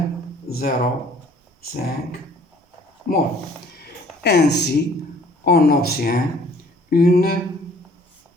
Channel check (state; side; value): normal; both; correlation 0.56